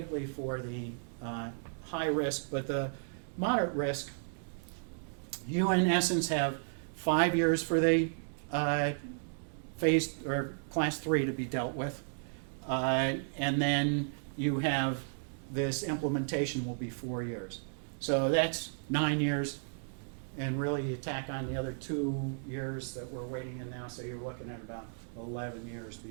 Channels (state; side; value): silent; left; digital silence